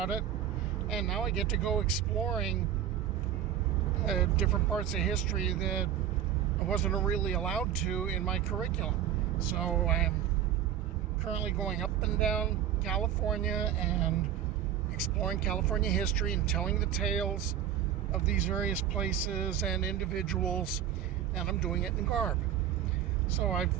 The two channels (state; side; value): quieter; left; 10.3 dB